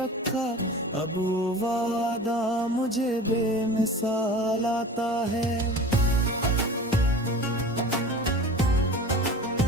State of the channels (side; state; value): both; normal; correlation 0.38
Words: अब वो वादा मुझे बेमिसाल आता है।